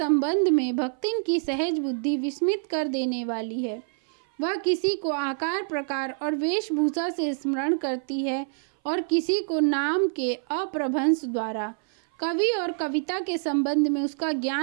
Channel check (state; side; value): silent; left; 58 dB below the other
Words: में भक्तिन की सहज बुद्धि विस्मित कर देने वाली है। वह किसी को आकार प्रकार और वेशभूषा से स्मरण करती है और किसी को नाम के अप्रभंश द्वारा। कवि और कविता के संबंध में उसका